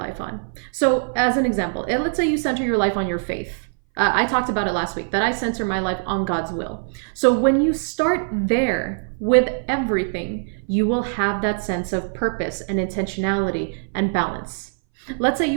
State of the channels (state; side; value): silent; left; 61 dB below the other